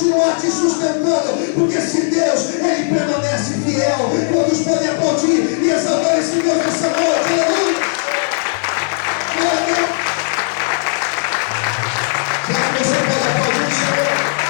te sustentando, porque se Deus, ele permanece fiel. Quantos podem aplaudir e exaltar esse Deus nessa noite? Aleluia! Glória a Deus! Será que você pode aplaudir o Senhor?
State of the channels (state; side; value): silent; right; digital silence